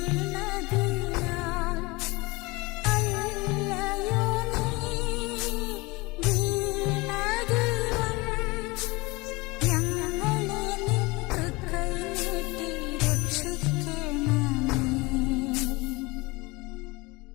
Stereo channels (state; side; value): quieter; right; 24.0 dB